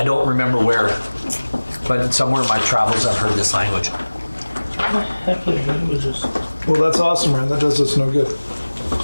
don't remember where, but somewhere in my travels I've heard this language. Heck of languages. Well, that's awesome, man. That does us no good.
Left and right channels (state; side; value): inverted; both; correlation -1.00